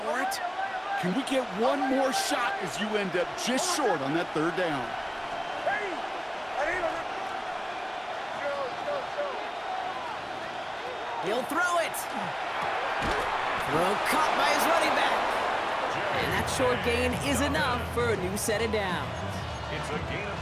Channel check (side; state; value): both; identical; correlation 1.00